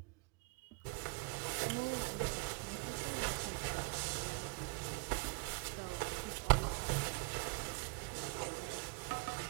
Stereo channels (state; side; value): quieter; left; 29.4 dB